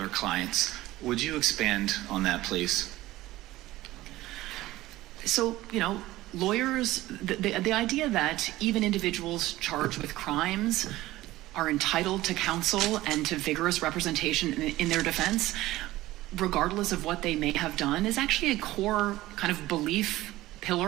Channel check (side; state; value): left; quieter; 16.9 dB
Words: clients. Would you expand on that, please? So, lawyers, the idea that even individuals charged with crimes are entitled to counsel and to vigorous representation in their defense, regardless of what they may have done, is actually a core kind of belief